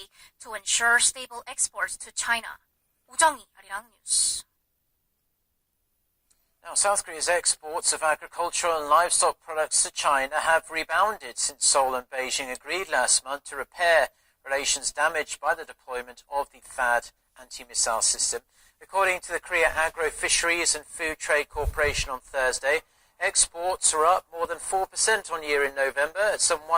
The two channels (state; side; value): identical; both; correlation 1.00